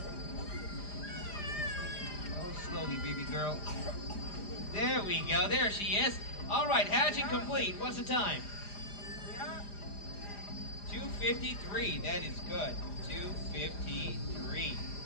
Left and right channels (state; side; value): late; right; 4.9 ms